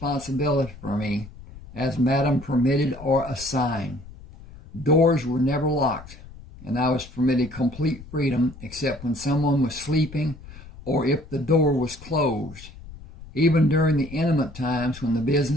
for me, as Madam permitted or assigned. Doors were never locked, and I was permitted complete freedom except when someone was sleeping or if the door was closed. Even during the intimate times when the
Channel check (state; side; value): noise; left; rumble, 17 dB below the sound